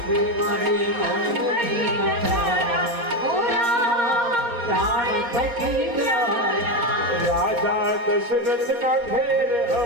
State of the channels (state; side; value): late; left; 4.2 ms